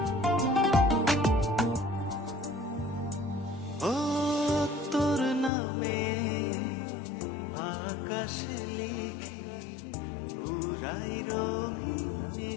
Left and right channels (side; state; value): right; drops out; at 5.5 s